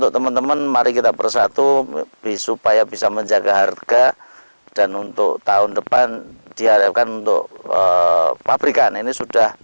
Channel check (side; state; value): both; inverted; correlation -1.00